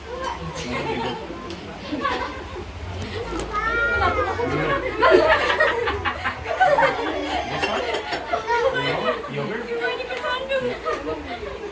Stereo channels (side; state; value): both; identical; correlation 1.00